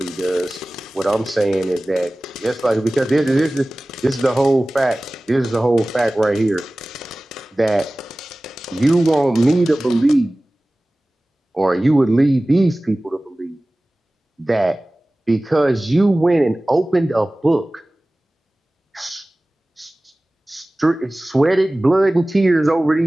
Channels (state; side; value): normal; both; correlation 0.98